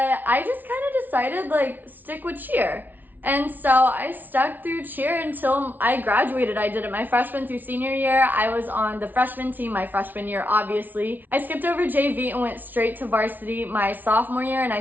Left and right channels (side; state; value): left; late; 0.084 ms